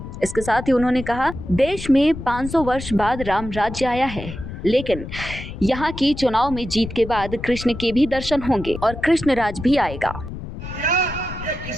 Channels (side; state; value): left; noise; rumble, 10 dB below the sound